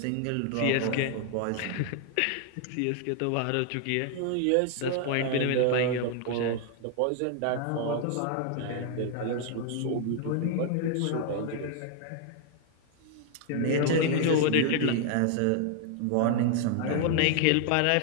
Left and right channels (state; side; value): different; both; correlation 0.00